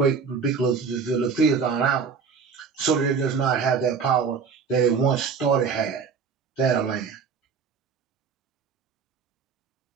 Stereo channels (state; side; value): quieter; left; 5.7 dB